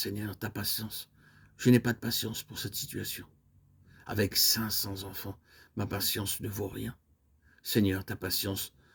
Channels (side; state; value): both; identical; correlation 1.00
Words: ta patience. Je n'ai pas de patience pour cette situation. Avec 500 enfants, ma patience ne vaut rien. Seigneur, ta patience